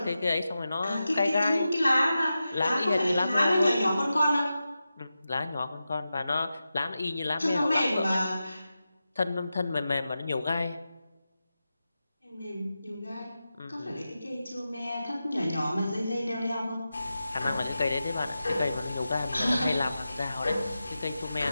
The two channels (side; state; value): both; inverted; correlation -0.92